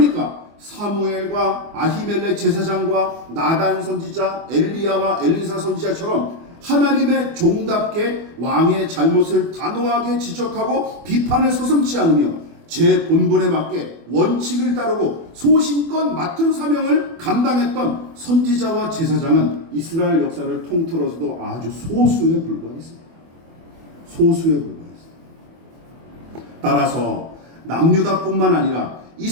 사무엘과 아히멜렉 제사장과 나단 선지자, 엘리야와 엘리사 선지자처럼 하나님의 종답게 왕의 잘못을 단호하게 지적하고 비판을 서슴지 않으며 제 본분에 맞게 원칙을 따르고 소신껏 맡은 사명을 감당했던 선지자와 제사장은 이스라엘 역사를 통틀어서도 아주 소수에 불과했습니다. 소수에 불과했습니다. 따라서 남유다뿐만 아니라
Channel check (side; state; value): left; late; 24 ms